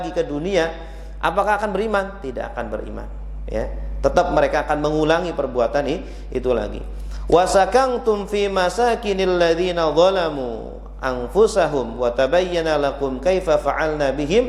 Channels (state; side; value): identical; both; correlation 1.00